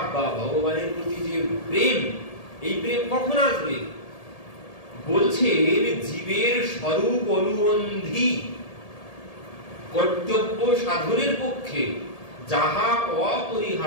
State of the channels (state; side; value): late; right; 1.8 ms